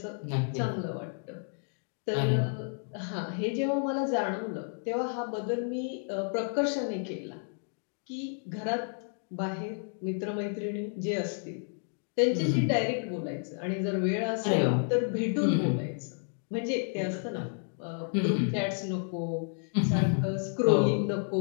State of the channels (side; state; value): right; silent; 57 dB below the other